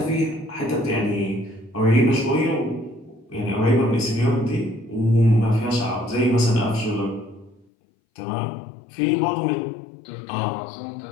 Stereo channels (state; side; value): drops out; right; at 7.7 s